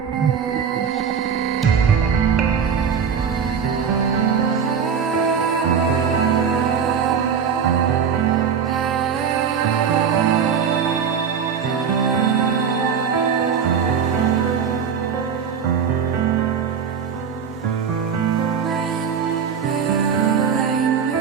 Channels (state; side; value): quieter; left; 7.0 dB